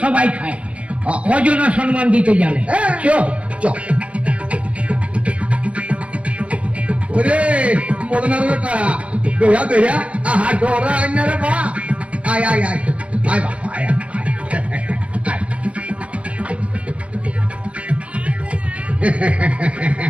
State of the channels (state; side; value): late; left; 0.062 ms